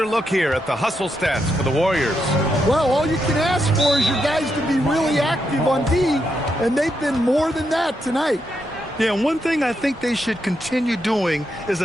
look here at the hustle stats for the Warriors. Well, all you can ask for is your guys to be really active on D, and they've been more than that tonight. Yeah, one thing I think they should continue doing is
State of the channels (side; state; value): both; normal; correlation 0.82